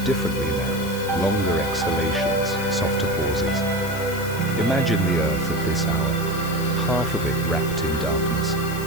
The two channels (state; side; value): noise; left; hiss, 13 dB below the sound